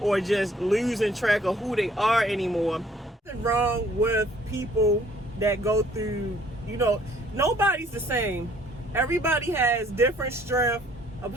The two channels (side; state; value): both; normal; correlation 0.60